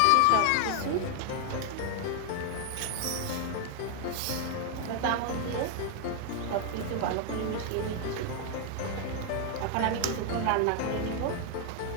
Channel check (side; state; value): both; different; correlation 0.00